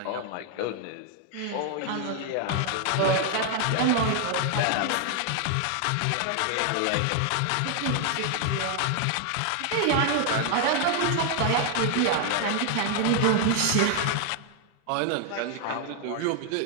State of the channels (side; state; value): both; different; correlation 0.00